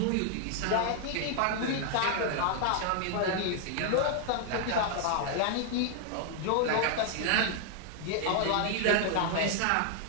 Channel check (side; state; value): both; different; correlation -0.01